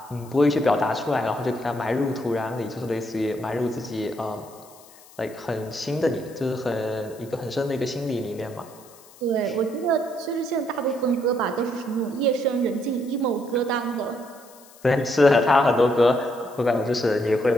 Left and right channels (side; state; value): left; noise; hiss, 24 dB below the sound